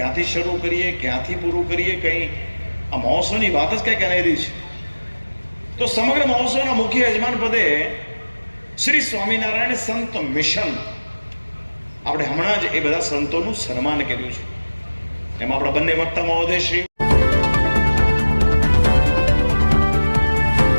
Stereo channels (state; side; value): inverted; both; correlation -1.00